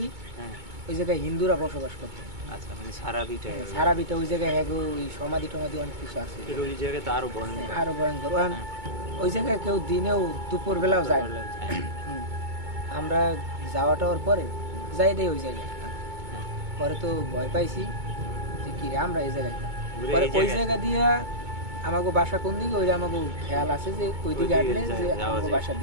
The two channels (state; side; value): late; left; 2.2 ms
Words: ওই জায়গায় হিন্দুরা বসবাস করতো। আচ্ছা, মানে সারা বিটা ওই জায়গায় ওই সমাধি টমাধি অনেক কিছু আছে, ওই জায়গায় তো আরো ভয়ঙ্কর। ওই জায়গায় কেউ দিনেও দুপুর বেলাও যায়। আমরা যাওয়া টাওয়ার পরে যাই দেই ওই জায়গায়, পরে তো ভয় পাইছি যে কি রে আমরা এই জায়গায়, পরে ওই জায়গা দিয়া আমাকে বাসা কোন দিকে ওই আমাকে খেয়াল আছে যে ওই দিকে হাঁটলে যে আমাকে বাসার